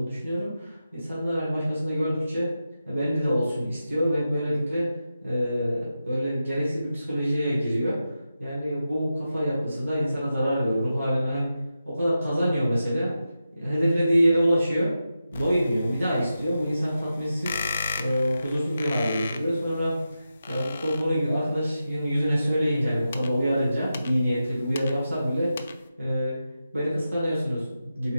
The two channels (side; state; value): both; inverted; correlation -0.90